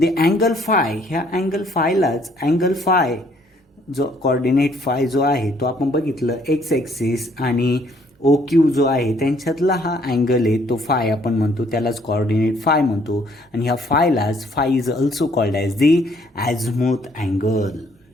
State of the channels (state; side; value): normal; both; correlation 0.64